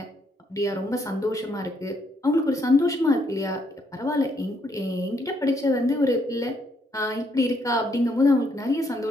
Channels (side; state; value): both; normal; correlation 0.73